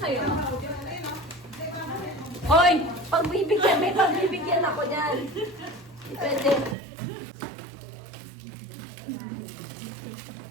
Hoy! Pagbibigyan, may pagbibigyan ako dyan. Pwede.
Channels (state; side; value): drops out; left; at 6.8 s